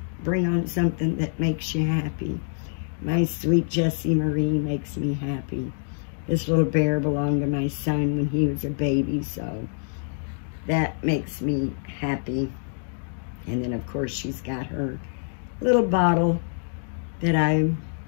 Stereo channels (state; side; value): silent; right; digital silence